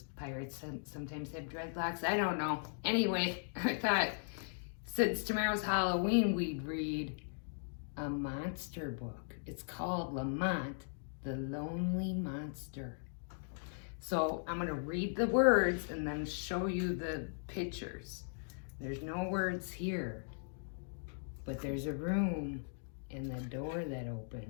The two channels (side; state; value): right; silent; digital silence